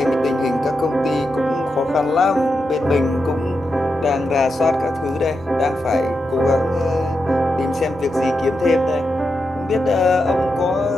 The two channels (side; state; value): both; normal; correlation 0.87